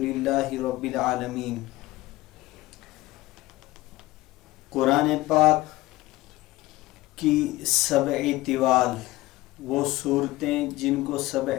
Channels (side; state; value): right; quieter; 18.4 dB